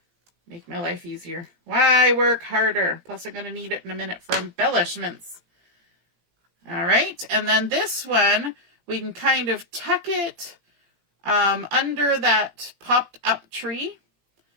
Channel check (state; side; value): late; left; 18 ms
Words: Make my life easier. Why work harder? Plus I'm going to need it in a minute for embellishments. All right, and then this one, we can kind of tuck it under that popped up tree